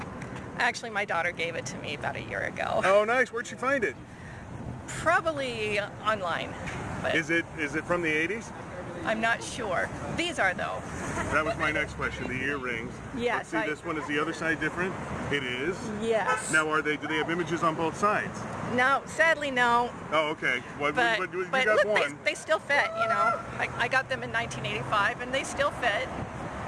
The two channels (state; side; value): identical; both; correlation 1.00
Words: Actually, my daughter gave it to me about a year ago. Oh, nice. Where'd she find it? Probably online. But Is it from the 80s? I'm not sure. These are, though. That was my next question, the earrings. Yes. Let's see, this one, is the other side different? It is? Yes. Now, do they have images on both sides? No, sadly, no. Oh, okay. Well, But you got look, one. they still fit, you know. I got them in 1985, and they still fit.